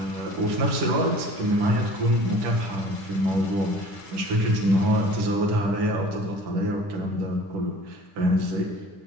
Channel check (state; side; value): late; left; 10 ms